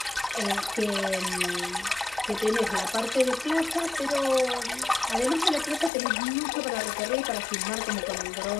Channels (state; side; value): drops out; right; at 5.9 s